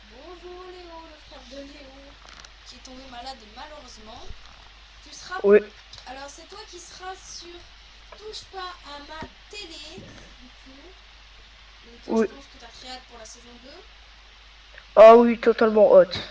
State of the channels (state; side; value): identical; both; correlation 1.00